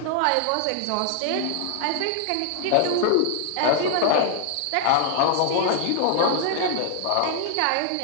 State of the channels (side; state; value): both; different; correlation 0.00